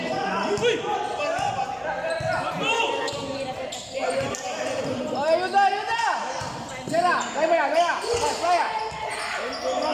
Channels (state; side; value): identical; both; correlation 1.00